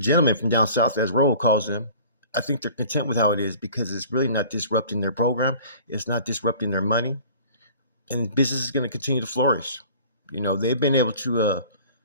from down south, as Roll calls them, I think they're content with how it is because it's really not disrupting their program. It's not disrupting their money. And business is going to continue to flourish. They've been able to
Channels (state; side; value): inverted; both; correlation -0.47